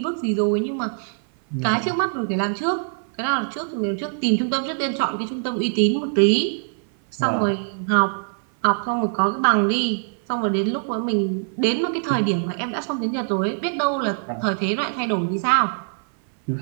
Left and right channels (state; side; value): silent; left; 57 dB below the other